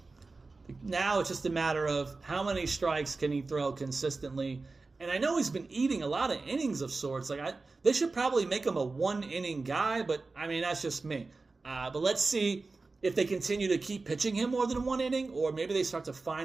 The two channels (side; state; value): left; quieter; 3.7 dB